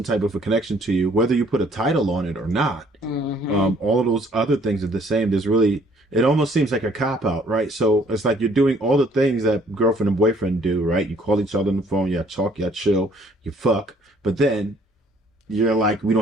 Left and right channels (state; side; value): normal; both; correlation 0.61